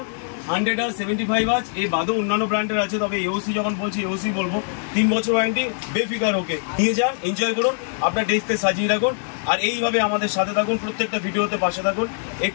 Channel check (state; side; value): silent; right; digital silence